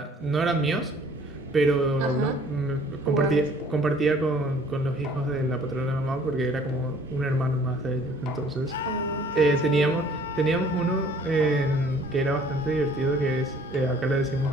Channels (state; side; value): normal; both; correlation 0.55